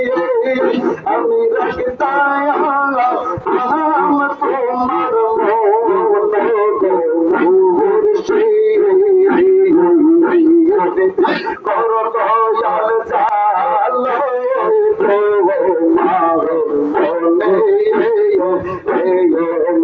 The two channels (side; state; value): both; identical; correlation 1.00